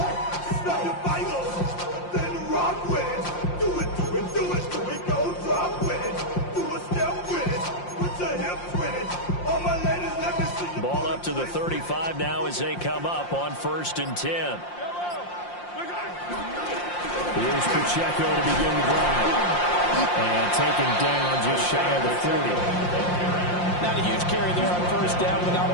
To the 35 now as they come up on 1st and 10. Here's Pacheco to begin the drive. And taken down just shy of the 40. Not a huge carry there on 1st down, but not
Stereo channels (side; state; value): right; late; 5.7 ms